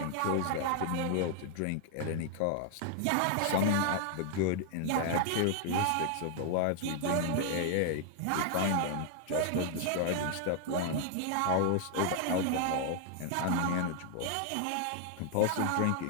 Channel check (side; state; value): both; different; correlation 0.00